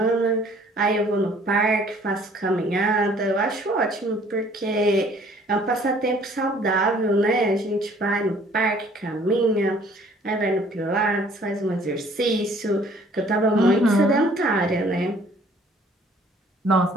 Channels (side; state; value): both; normal; correlation 0.56